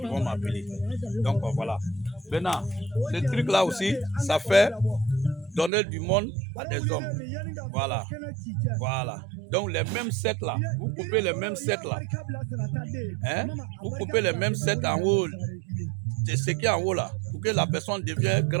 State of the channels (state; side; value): drops out; left; at 5.7 s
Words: vont m'appeler. Donc voilà. Maintenant, ce truc-là aussi, ça fait donner du monde à des hommes. Voilà. Voilà. Donc les mêmes sets là, vous coupez les mêmes sets là. Hein? Vous coupez les mêmes sets en haut. C'est ce qui est en haut là, pour que la personne devienne